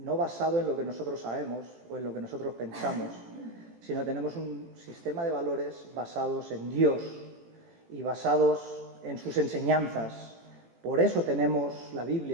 basado en lo que nosotros sabemos o en lo que nosotros pensamos, sino tenemos un sistema de valores basados en Dios y basados en sus enseñanzas. Por eso tenemos la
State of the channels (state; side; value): late; left; 18 ms